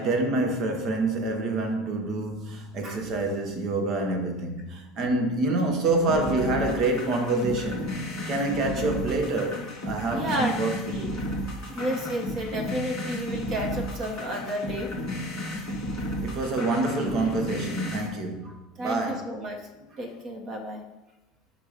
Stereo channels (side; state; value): both; normal; correlation 0.36